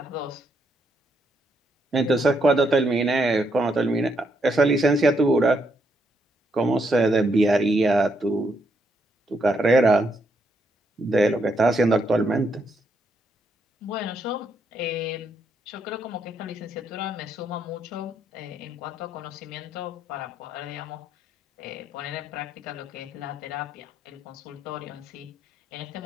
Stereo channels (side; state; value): both; normal; correlation 0.77